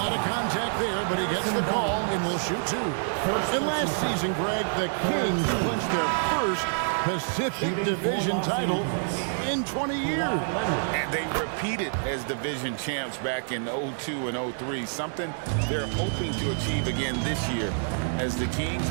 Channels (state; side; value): silent; left; digital silence